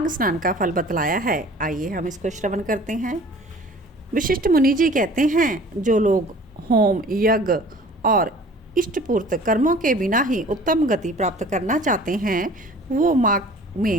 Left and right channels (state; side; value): normal; both; correlation 0.47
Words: स्नान का फल बतलाया है। आइए हम इसको श्रवण करते हैं। विशिष्ट मुनि जी कहते हैं, जो लोग होम, यज्ञ और इष्टपूर्त कर्मों के बिना ही उत्तम गति प्राप्त करना चाहते हैं वो माघ